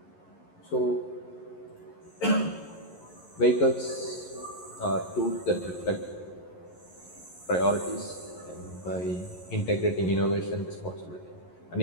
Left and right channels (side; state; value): right; late; 11 ms